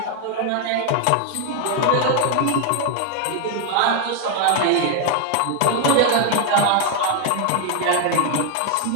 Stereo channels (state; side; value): different; both; correlation 0.00